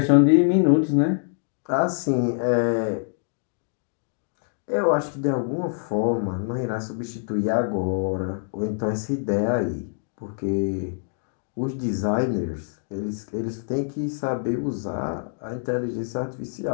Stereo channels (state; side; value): silent; right; digital silence